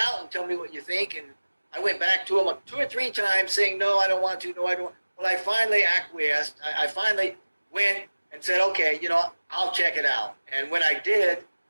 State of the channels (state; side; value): inverted; both; correlation -1.00